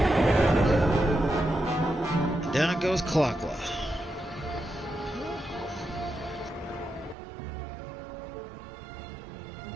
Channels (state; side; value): drops out; left; at 7.2 s